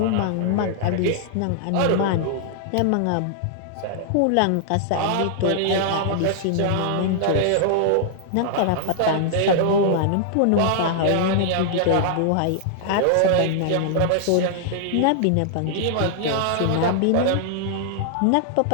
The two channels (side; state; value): both; different; correlation -0.01